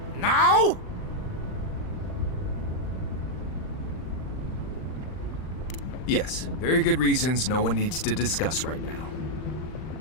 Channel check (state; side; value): late; right; 39 ms